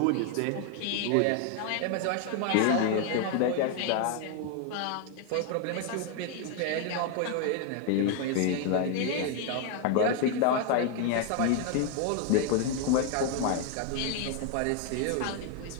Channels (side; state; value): both; different; correlation 0.00